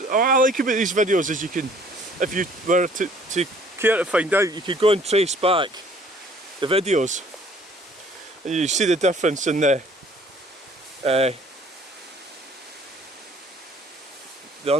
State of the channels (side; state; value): both; normal; correlation 0.56